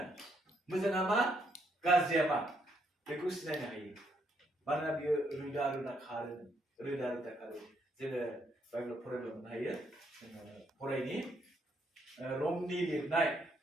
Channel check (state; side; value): normal; both; correlation 0.74